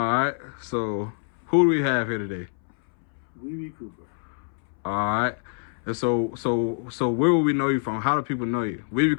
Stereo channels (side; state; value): right; silent; 61 dB below the other